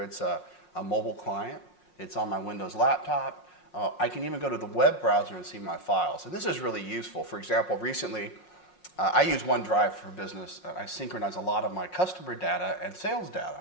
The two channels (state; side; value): late; right; 5.5 ms